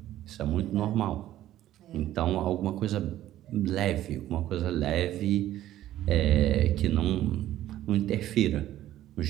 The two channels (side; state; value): left; quieter; 13.3 dB